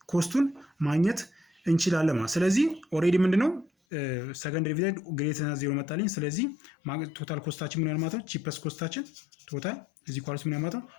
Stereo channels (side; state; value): right; drops out; at 3.7 s